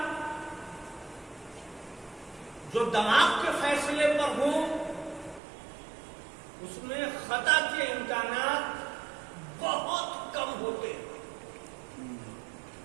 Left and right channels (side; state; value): left; drops out; at 5.4 s